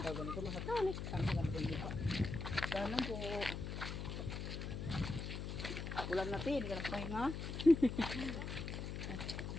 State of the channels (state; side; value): noise; left; hum, 5 dB below the sound